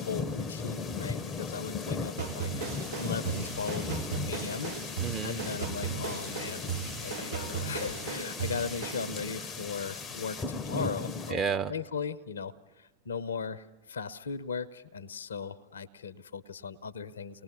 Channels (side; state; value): both; normal; correlation -0.10